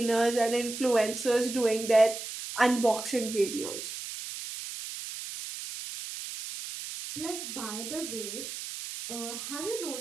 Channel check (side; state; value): right; noise; hiss, 8 dB below the sound